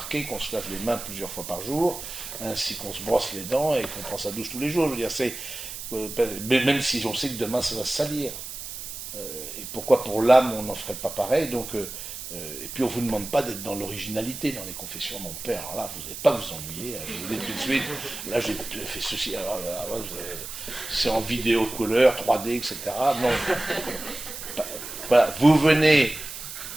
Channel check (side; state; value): right; noise; hiss, 9 dB below the sound